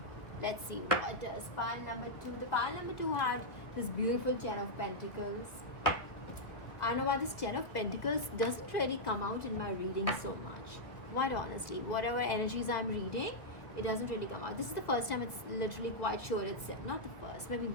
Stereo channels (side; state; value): right; late; 1.5 ms